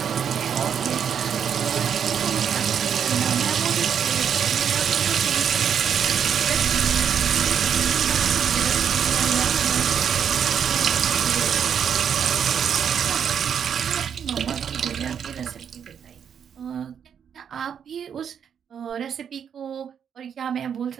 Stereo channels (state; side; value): quieter; left; 7.9 dB